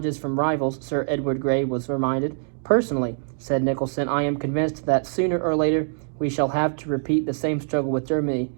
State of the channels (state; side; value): silent; left; digital silence